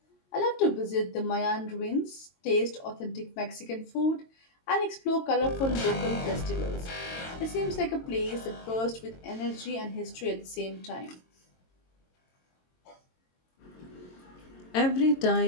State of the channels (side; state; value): right; late; 22 ms